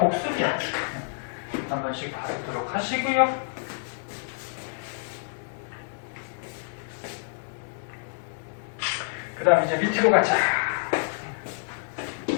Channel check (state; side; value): silent; right; 59 dB below the other